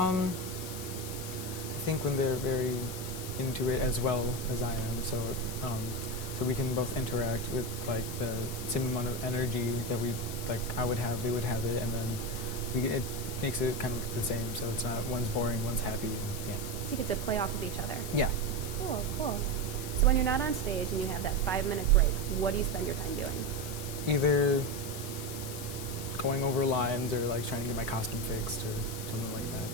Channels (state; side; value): noise; left; hiss, 9 dB below the sound